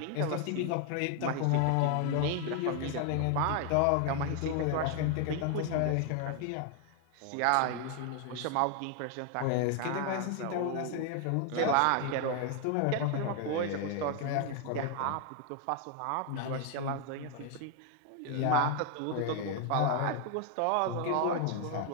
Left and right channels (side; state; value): both; different; correlation 0.01